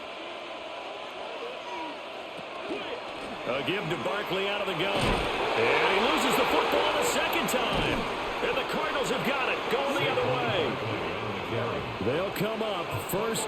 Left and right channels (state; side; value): identical; both; correlation 1.00